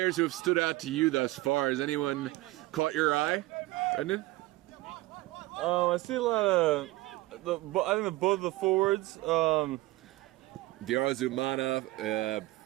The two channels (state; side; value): quieter; left; 18.8 dB